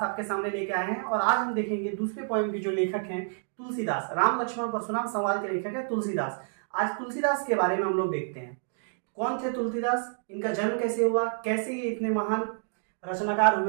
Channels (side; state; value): left; silent; digital silence